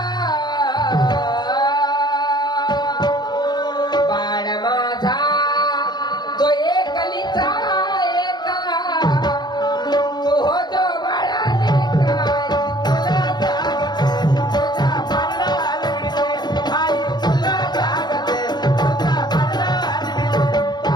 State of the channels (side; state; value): right; late; 0.21 ms